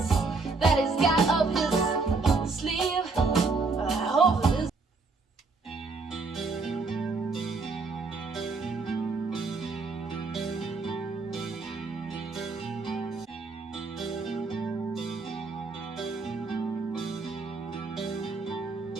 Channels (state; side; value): quieter; left; 4.0 dB